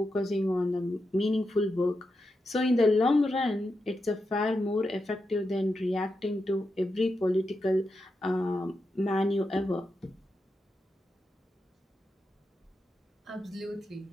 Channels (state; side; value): normal; both; correlation 0.87